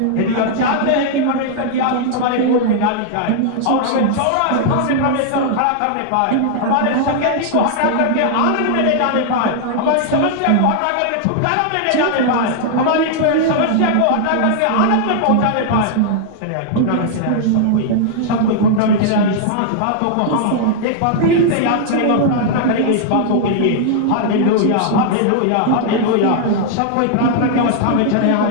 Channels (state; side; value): different; both; correlation -0.01